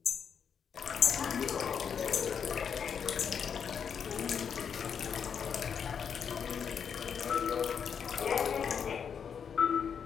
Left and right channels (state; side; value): quieter; right; 7.2 dB